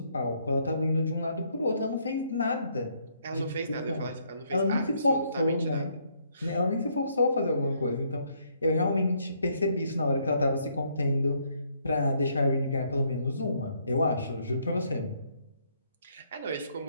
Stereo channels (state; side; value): inverted; both; correlation -0.70